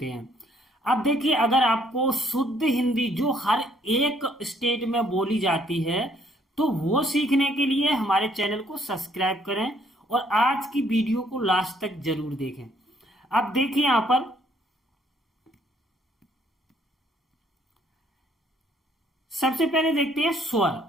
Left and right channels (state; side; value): normal; both; correlation 0.65